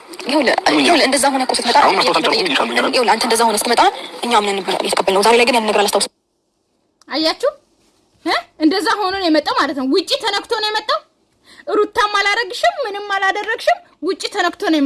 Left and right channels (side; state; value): both; identical; correlation 1.00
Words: ይኸውልህ እንደዛ ሆነ እኮ ስትመጣ ይኸውልህ አንተ እንደዛ ሆነ ስትመጣ እኛ ምን ነበር የተቀበልነው ዛሬ ላይ ግን ያን ነገር አላስታውስም አያችሁ እንደዛ ሆኖ ነው የመጣው ማለት ነው ውጪ ተነክቶ ነው የመጣው ሩታም አላረግሽም ምንም አላደረግሽም ውጪ ተነክቶ ነው